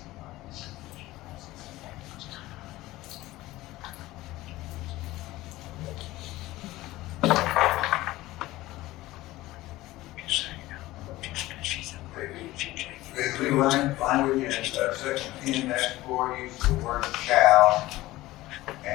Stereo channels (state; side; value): quieter; right; 17.6 dB